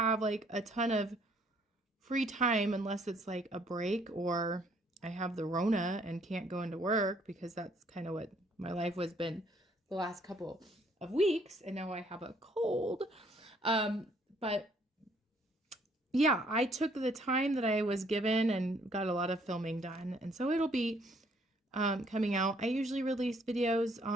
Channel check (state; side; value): normal; both; correlation 0.64